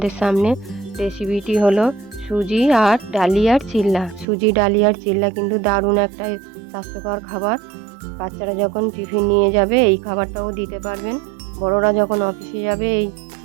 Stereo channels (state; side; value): drops out; left; at 4.2 s